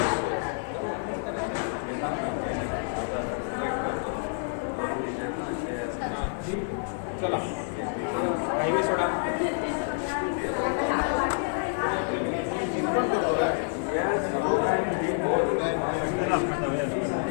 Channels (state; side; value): silent; right; digital silence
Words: चला हायवे सोडा.